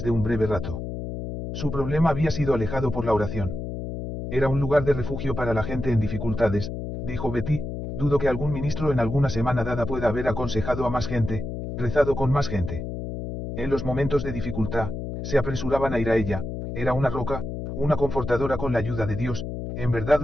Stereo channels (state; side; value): noise; left; hum, 6 dB below the sound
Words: de un breve rato. Su problema había sido alejado por la oración. Era un lugar de refugio para la gente en dificultades, dijo Betty, dudo que algún ministro en alguna semana dada pueda haber aconsejado a más gente, rezado con más gente. En los momentos de dificultad, se apresuraban a ir a ella, era una roca, una confortadora con la ayuda de Dios, en verdad